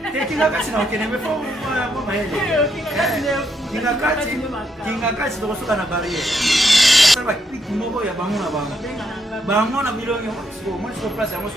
Te kingakati na okene fo mama yeye. Kingakati to kosoka na barrière. Sasa ba piki moko ya bango na bango. Bango na milongi ko mo so place mo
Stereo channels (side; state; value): both; normal; correlation 0.77